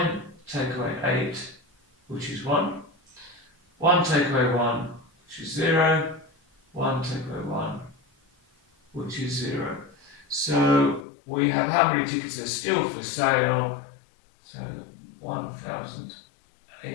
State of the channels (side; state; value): right; drops out; at 11.0 s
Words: take away 8, which is 1. 1 take away 1, which is 0. 1 take away 1, which is 0. So we have how many tickets are still for sale? So